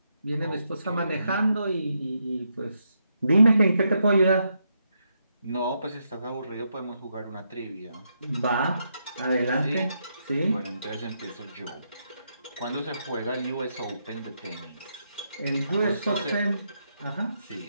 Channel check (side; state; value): both; inverted; correlation -0.80